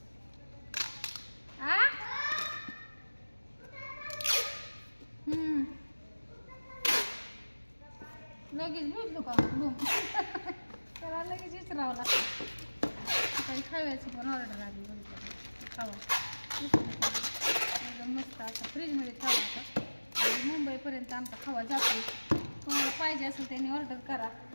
आ लगेच बुजलो का त्याला लगेच विचारावं लागतं. काही खाव्याची पण ऑर्डर आली बघितलं खावा एकदम मस्त असं फ्रीजमध्ये खावा. आता मुंबईपर्यंत आमचा खावा जातो. कोणाला पाहिजे असेल त्यांनी ऑर्डर करा.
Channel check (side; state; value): both; inverted; correlation -1.00